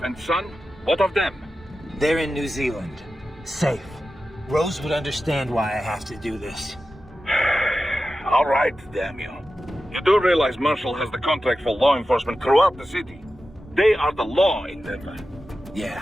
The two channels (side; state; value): both; normal; correlation 0.93